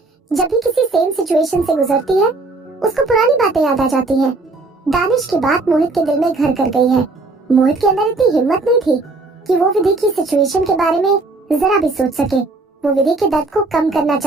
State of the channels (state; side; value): quieter; left; 3.4 dB